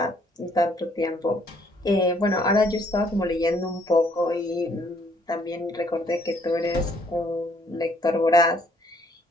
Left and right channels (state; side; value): normal; both; correlation 0.65